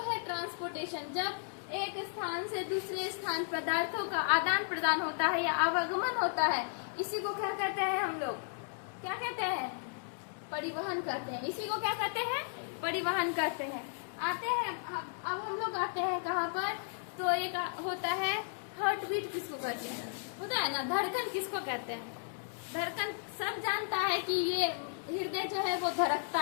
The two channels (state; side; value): silent; right; digital silence